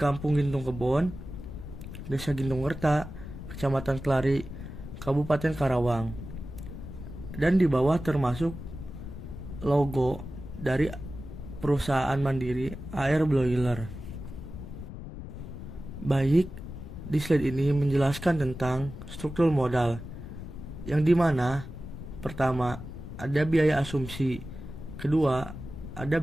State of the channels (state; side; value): noise; left; rumble, 10 dB below the sound